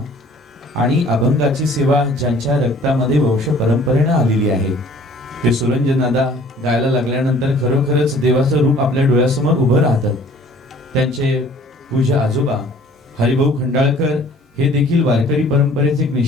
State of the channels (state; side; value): normal; both; correlation 0.53